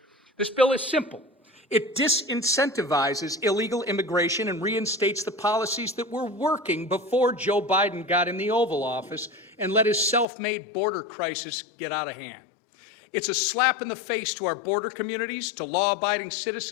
This bill is simple. It disincentivizes illegal immigration and reinstates the policies that were working before Joe Biden got in the Oval Office and let his self-made border crisis get out of hand. It's a slap in the face to our border communities, to law-abiding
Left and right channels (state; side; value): drops out; right; at 10.2 s